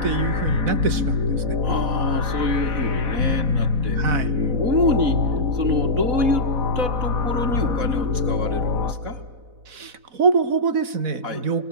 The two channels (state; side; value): late; left; 4.0 ms